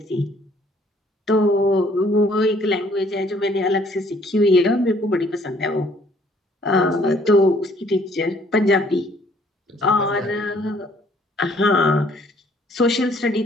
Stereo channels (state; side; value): normal; both; correlation 0.61